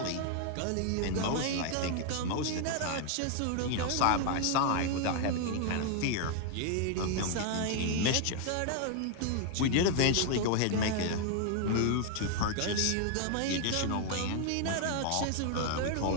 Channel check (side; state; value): both; different; correlation 0.00